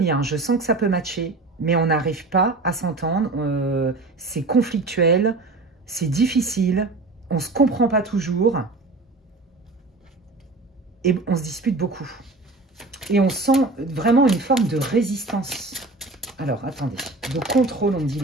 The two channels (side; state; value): left; quieter; 3.3 dB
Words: je sens que ça peut matcher, mais on n'arrive pas à s'entendre. C'est conflictuel, c'est difficile, on ne se comprend pas toujours et on se dispute beaucoup. Et on sent vraiment une forme de résistance. Alors, attendez, de contrôle, on me dit